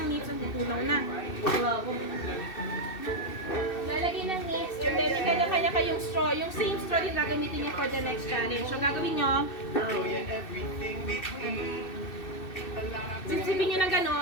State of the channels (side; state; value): right; late; 2.6 ms